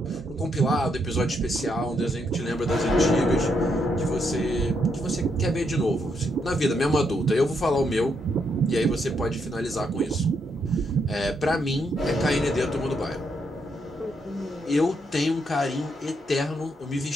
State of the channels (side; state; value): both; normal; correlation 0.77